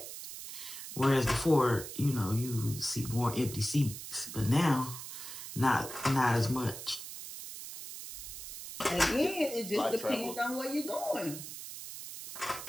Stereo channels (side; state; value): right; noise; hiss, 10 dB below the sound